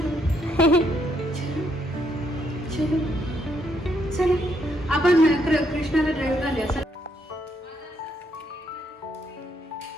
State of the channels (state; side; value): normal; both; correlation 0.74